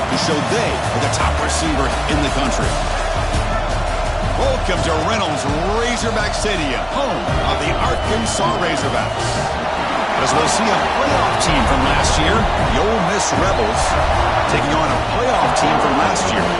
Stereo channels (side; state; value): both; identical; correlation 1.00